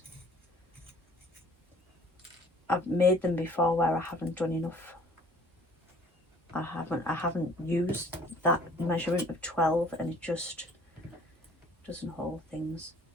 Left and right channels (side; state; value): both; normal; correlation 0.54